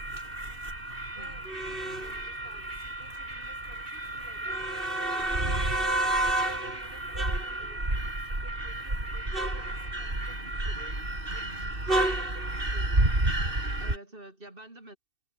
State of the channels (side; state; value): left; late; 2.6 ms